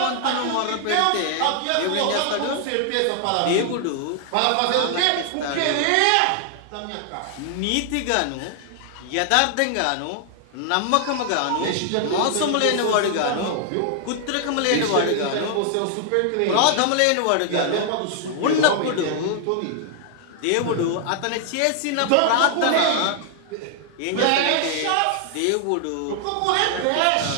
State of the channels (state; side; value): different; both; correlation 0.00